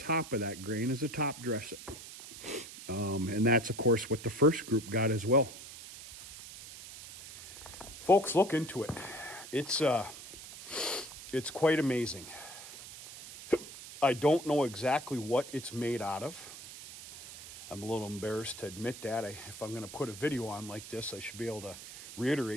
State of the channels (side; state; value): right; noise; hiss, 14 dB below the sound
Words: of that grain as a top dressing. And that's, of course, what the first group got as well. Folks, look into it. It's quite amazing. I don't know exactly what it's made out of. I'm a little embarrassed to admit that. If I'm going to put a video on like this, I should be able to